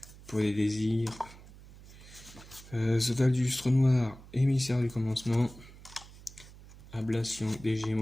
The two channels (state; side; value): noise; right; hum, 19 dB below the sound